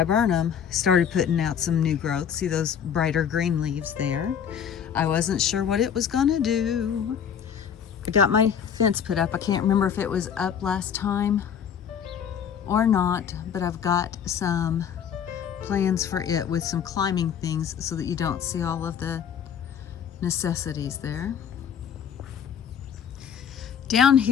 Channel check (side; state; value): right; quieter; 8.1 dB